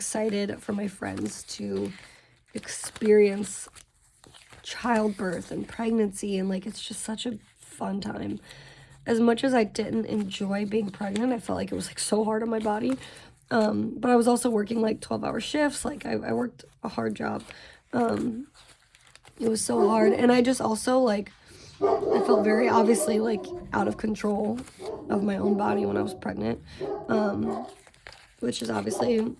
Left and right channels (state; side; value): identical; both; correlation 1.00